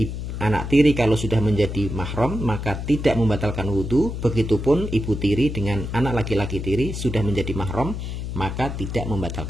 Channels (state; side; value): noise; left; hum, 5 dB below the sound